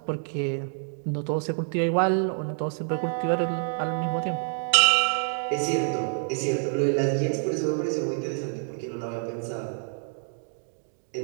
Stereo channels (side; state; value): left; silent; 60 dB below the other